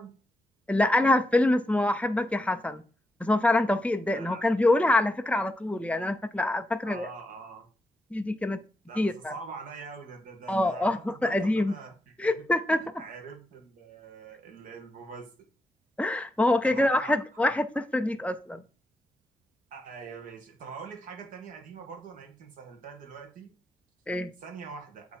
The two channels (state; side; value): normal; both; correlation 0.85